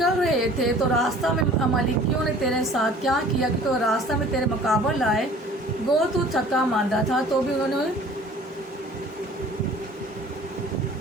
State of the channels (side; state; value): both; normal; correlation 0.48